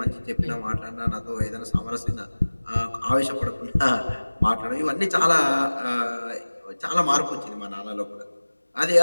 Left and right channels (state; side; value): inverted; both; correlation -1.00